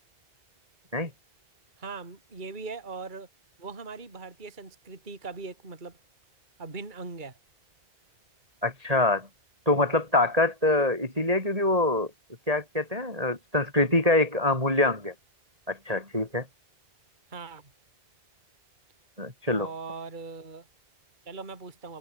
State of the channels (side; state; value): left; late; 1.8 ms